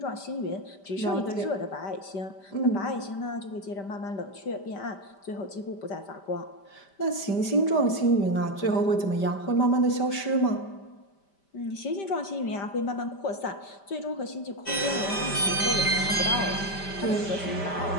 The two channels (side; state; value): right; late; 5.1 ms